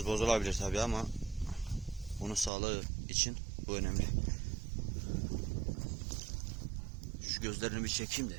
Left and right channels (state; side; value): drops out; left; at 2.5 s